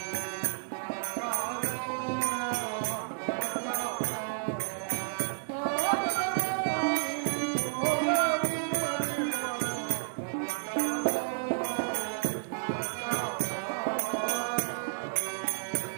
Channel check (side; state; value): left; silent; digital silence